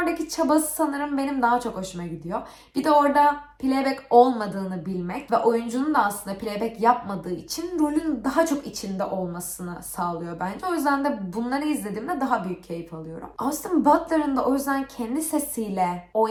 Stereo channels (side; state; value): both; identical; correlation 1.00